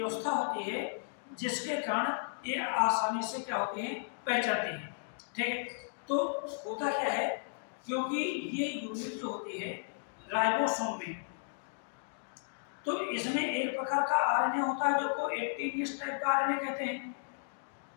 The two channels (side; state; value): right; silent; digital silence